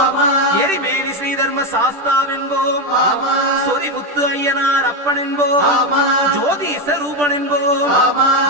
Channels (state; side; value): late; left; 10 ms